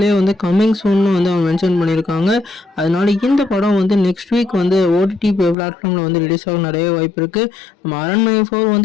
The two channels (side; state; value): right; drops out; at 5.6 s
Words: வந்து கம்மிங் சூன்னு வந்து அவங்க மென்ஷன் பண்ணியிருக்காங்க. அதனால இந்த படம் வந்து நெக்ஸ்ட் வீக் வந்து ஓடிடி பிளாட்ஃபார்மில் வந்து ரிலீஸ் ஆக நிறைய வாய்ப்பு இருக்குது. நம்ம அரண்மனை 4